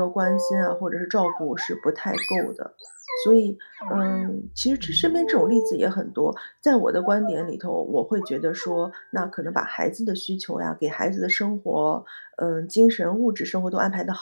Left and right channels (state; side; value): inverted; both; correlation -1.00